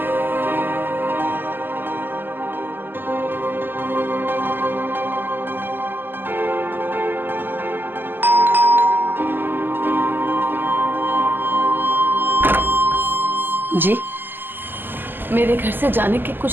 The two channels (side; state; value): left; late; 0.093 ms